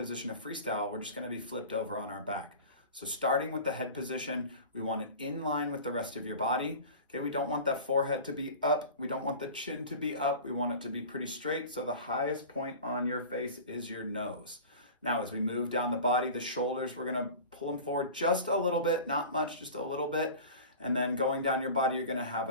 to freestyle. We're just going to be flipped over on our back. So starting with the head position, we want it in line with the rest of your body. Okay, we don't want that forehead to be up. We don't want the chin to be up. We want it to be pretty straight. So the highest point on your face is your nose. Now, as we move down the body, the shoulders, we're gonna pull them forward just a little bit, not much, just a little bit. And then going down your body, you're gonna have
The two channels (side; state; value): both; inverted; correlation -0.37